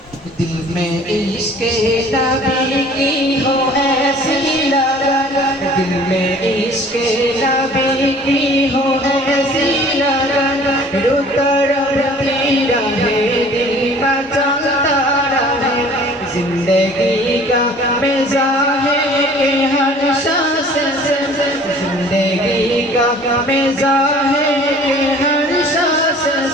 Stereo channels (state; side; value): normal; both; correlation 0.50